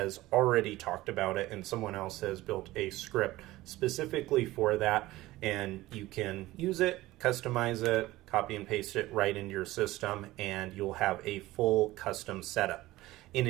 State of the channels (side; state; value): left; quieter; 17.6 dB